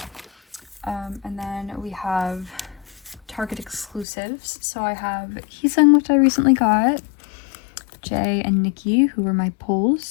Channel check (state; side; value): drops out; right; at 4.0 s